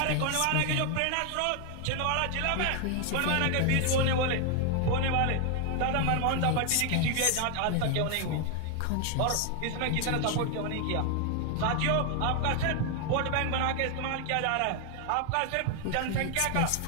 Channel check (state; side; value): different; both; correlation 0.00